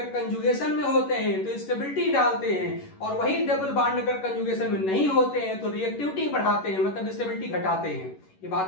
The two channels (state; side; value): late; right; 11 ms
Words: कंजुगेशन में होते हैं तो स्टेबिलिटी डालते हैं, और वही डबल बॉन्ड अगर कंजुगेशन में नहीं होते हैं तो रिएक्टिविटी बढ़ाते हैं, मतलब स्टेबिलिटी घटाते हैं। ये